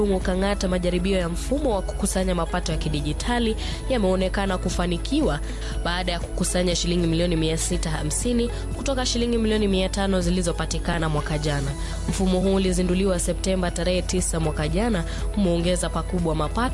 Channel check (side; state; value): both; identical; correlation 1.00